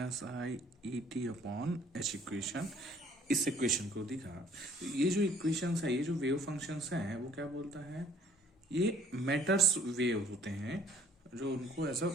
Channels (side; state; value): both; normal; correlation 0.57